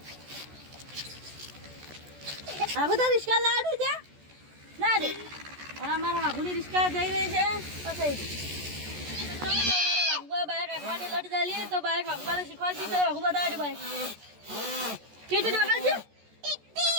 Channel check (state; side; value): late; left; 14 ms